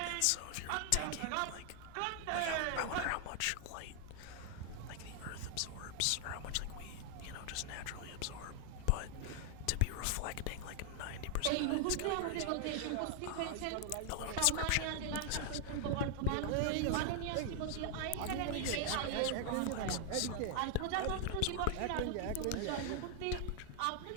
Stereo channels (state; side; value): different; both; correlation 0.00